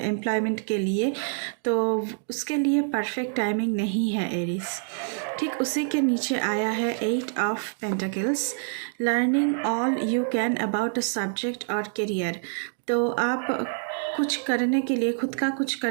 के लिए, तो उसके लिए परफेक्ट टाइमिंग नहीं है एरीज। ठीक उसी के नीचे आया है eight of pentacles, learning all you can about a subject और करियर। तो आप कुछ करने के लिए, खुद का कुछ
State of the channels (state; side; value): silent; left; digital silence